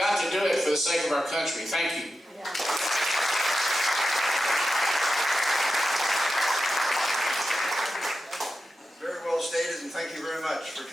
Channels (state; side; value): normal; both; correlation 0.91